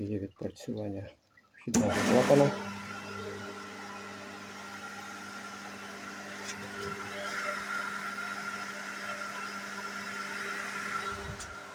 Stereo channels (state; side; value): identical; both; correlation 1.00